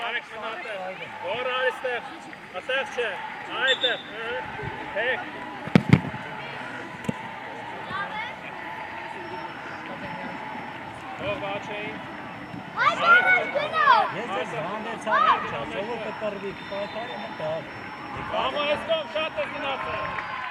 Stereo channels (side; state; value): both; identical; correlation 1.00